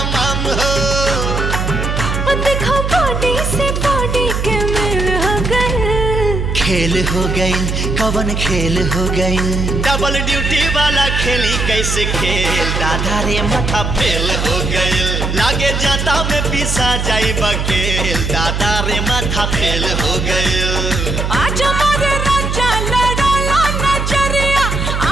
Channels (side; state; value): right; noise; hum, 1 dB below the sound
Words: हो। देखो बॉडी से बॉडी के मेल हो गए, खेल हो गई कवन खेल हो गई, डबल ड्यूटी वाला खेली कैसे खेल, दादा रे माथा फेल हो गई, लागे जाता में पिसा जाई बकेल, दादा रे माथा फेल हो गई। आज हमारे राजा लड़ाला नजरिया,